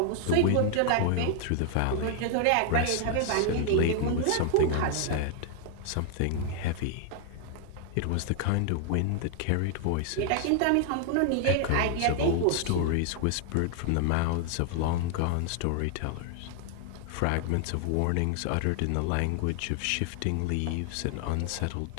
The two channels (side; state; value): both; different; correlation 0.00